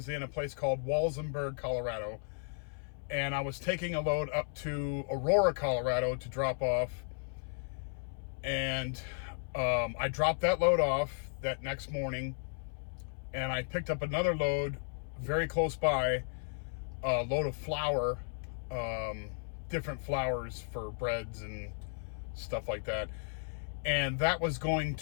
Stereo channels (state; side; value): silent; right; 55 dB below the other